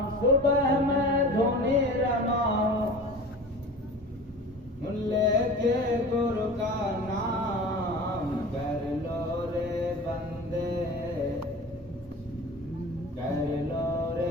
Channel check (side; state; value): both; normal; correlation 0.37